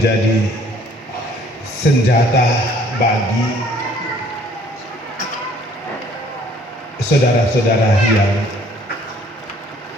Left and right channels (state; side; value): normal; both; correlation 0.58